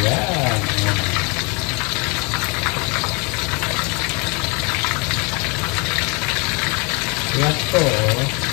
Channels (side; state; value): right; quieter; 30.7 dB